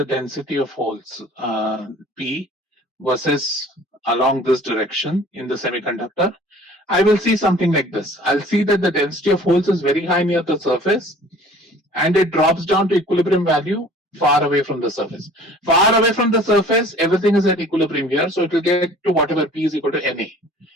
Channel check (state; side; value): normal; both; correlation 0.49